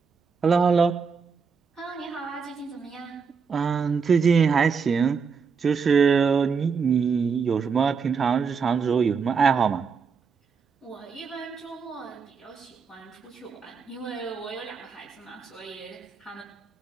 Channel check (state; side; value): quieter; left; 5.7 dB